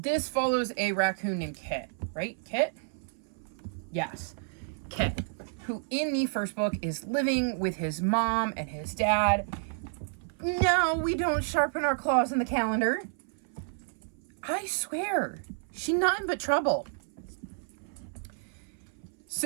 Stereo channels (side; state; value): left; silent; 57 dB below the other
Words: follows a raccoon named Kit, right? Kit? Yes, Kit, who in the first book is living with his mom and his dad. No, we don't sharpen our claws in the calendar. I swear, she nothing but trouble.